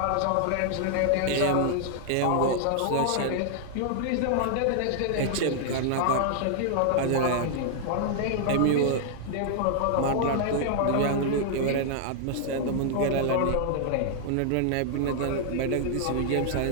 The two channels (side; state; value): both; different; correlation -0.01